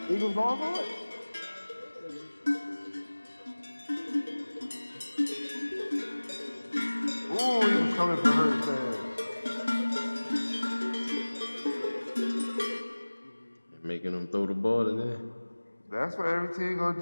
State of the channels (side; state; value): both; inverted; correlation -1.00